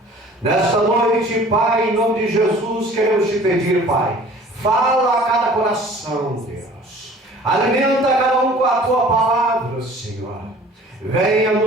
Nesta noite, Pai, em nome de Jesus, queremos Te pedir, Pai, fala a cada coração, Deus. Alimenta cada um com a Tua palavra, Senhor. Venha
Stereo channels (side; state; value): both; normal; correlation 0.49